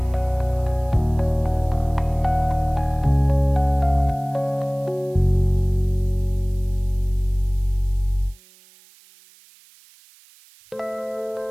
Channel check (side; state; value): right; noise; hiss, 27 dB below the sound